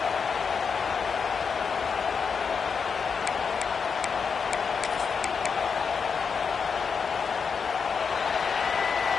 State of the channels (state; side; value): quieter; right; 5.9 dB